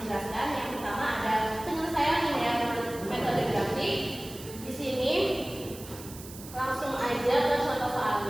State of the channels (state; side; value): noise; right; hiss, 15 dB below the sound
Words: yang pertama ada penyelesaian linear metode grafik. Di sini langsung aja ke contoh